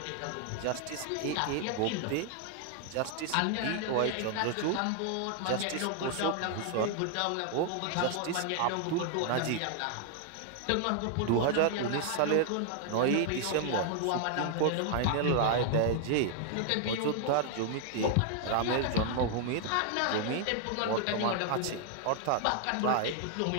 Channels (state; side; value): different; both; correlation 0.00